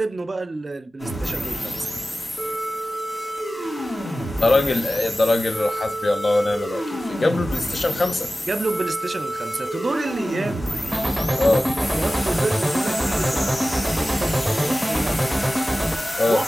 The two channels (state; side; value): normal; both; correlation 0.95